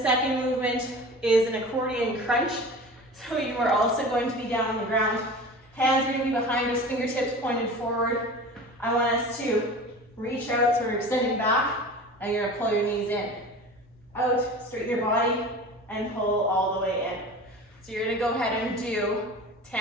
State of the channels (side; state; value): both; normal; correlation 0.36